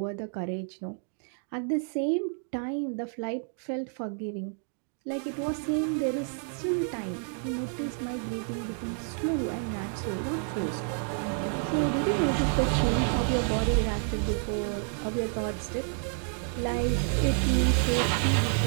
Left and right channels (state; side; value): silent; left; 58 dB below the other